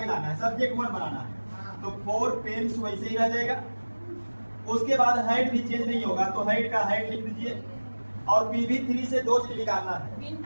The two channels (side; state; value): both; inverted; correlation -1.00